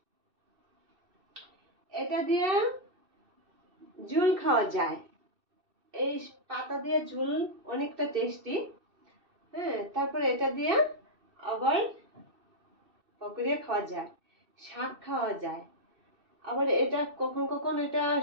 এটা দিয়ে ঝুল খাওয়া যায়, এই পাতা দিয়ে ঝুল অনেকটা টেস্টি। হ্যাঁ, তারপরে এটা দিয়ে আবার পকোড়া খাওয়া যায়, শাক খাওয়া যায়। আবার এটা কখন কখন এটা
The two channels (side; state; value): left; late; 2.6 ms